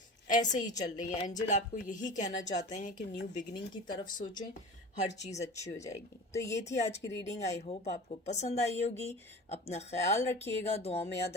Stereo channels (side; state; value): both; normal; correlation 0.35